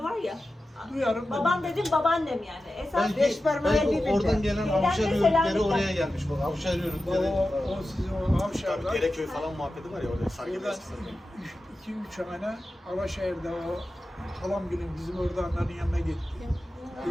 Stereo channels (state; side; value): normal; both; correlation 0.93